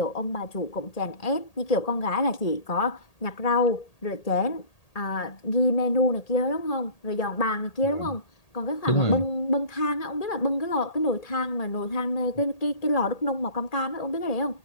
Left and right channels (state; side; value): late; right; 1.8 ms